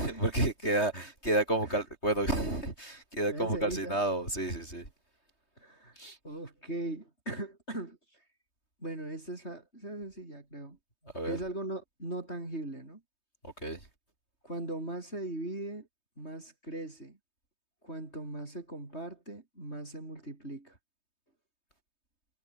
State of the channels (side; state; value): right; late; 3.2 ms